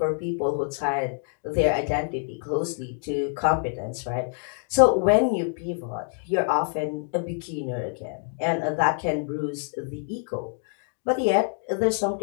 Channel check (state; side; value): silent; right; 61 dB below the other